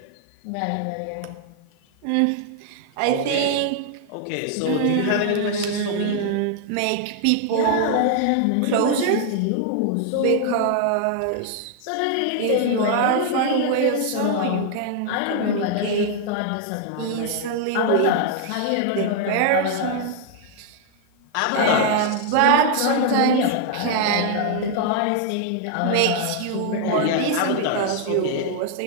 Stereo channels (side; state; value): both; different; correlation 0.00